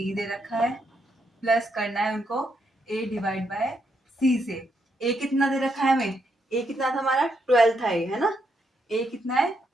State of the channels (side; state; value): both; normal; correlation 0.78